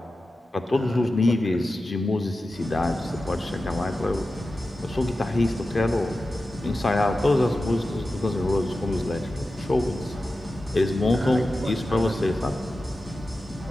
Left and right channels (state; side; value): normal; both; correlation 0.93